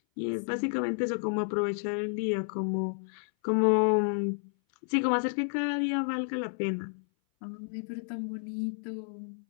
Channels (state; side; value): silent; right; 57 dB below the other